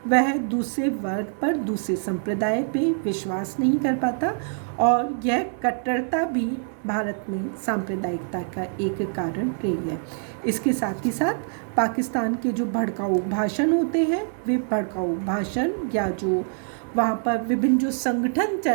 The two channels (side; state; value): left; silent; 57 dB below the other